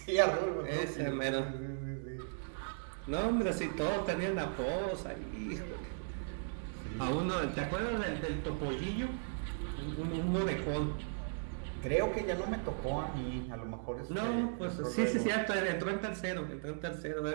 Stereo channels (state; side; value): silent; left; digital silence